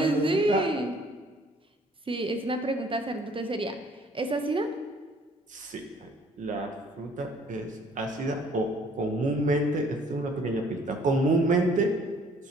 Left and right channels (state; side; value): normal; both; correlation 0.58